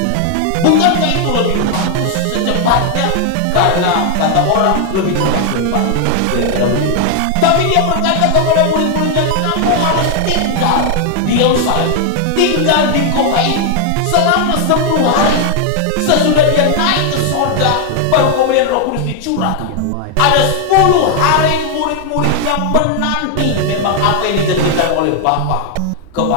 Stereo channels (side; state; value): both; different; correlation 0.00